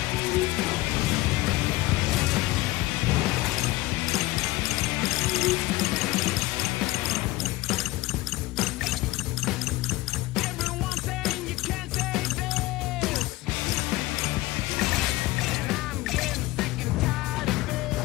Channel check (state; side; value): quieter; right; 18.9 dB